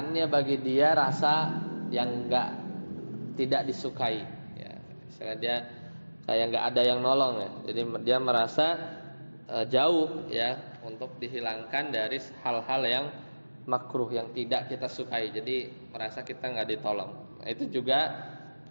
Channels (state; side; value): inverted; both; correlation -1.00